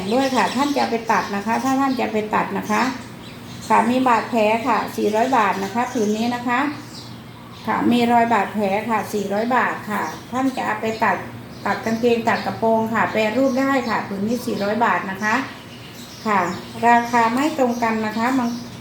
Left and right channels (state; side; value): identical; both; correlation 1.00